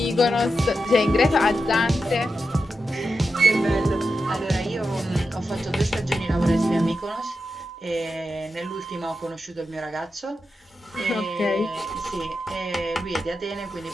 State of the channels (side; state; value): both; normal; correlation 0.89